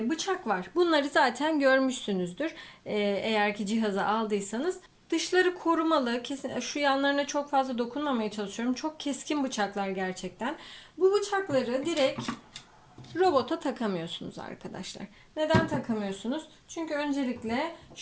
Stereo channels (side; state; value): both; identical; correlation 1.00